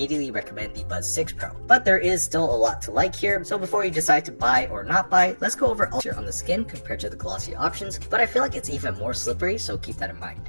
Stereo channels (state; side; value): inverted; both; correlation -1.00